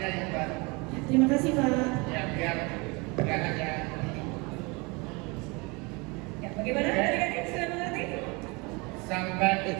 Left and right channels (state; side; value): quieter; left; 27.8 dB